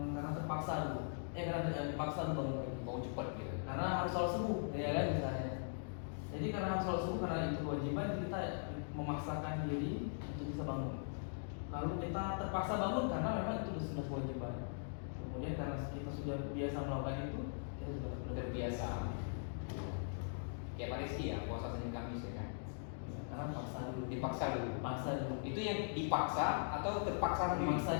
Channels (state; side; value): silent; right; digital silence